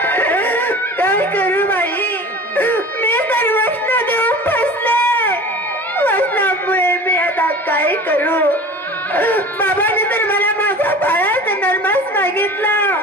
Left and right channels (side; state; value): both; normal; correlation 0.39